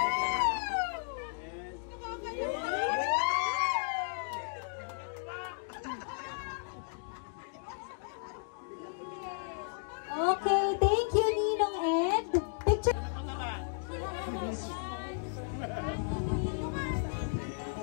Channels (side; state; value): right; silent; digital silence